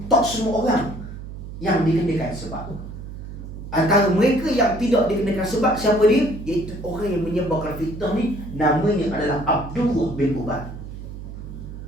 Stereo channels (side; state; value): right; noise; hum, 11 dB below the sound